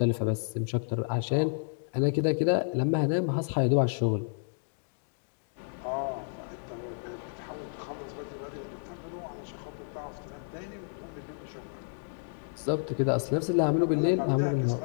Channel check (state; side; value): silent; right; digital silence